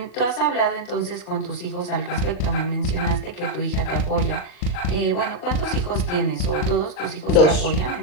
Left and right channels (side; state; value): right; late; 40 ms